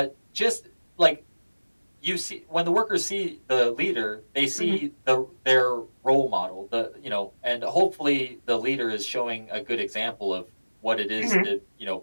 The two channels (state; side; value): inverted; both; correlation -1.00